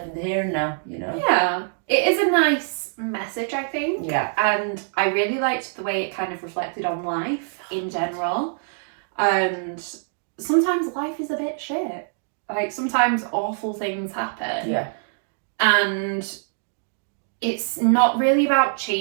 in the here and now, you know? Yeah. It is a nice message, I think. Yeah. And I really liked the way it kind of reflected on life in general. And sometimes life is a bit shit. Like sometimes awful things happen. Yeah. And it's not really about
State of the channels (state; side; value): silent; left; digital silence